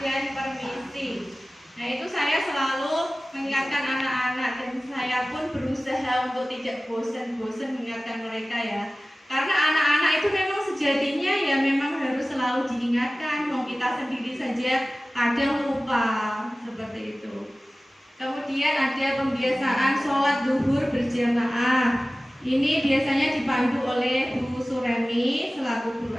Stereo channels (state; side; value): normal; both; correlation 0.97